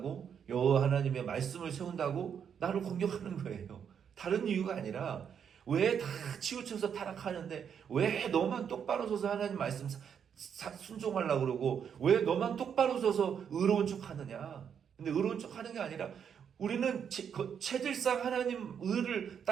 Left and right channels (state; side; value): quieter; left; 7.8 dB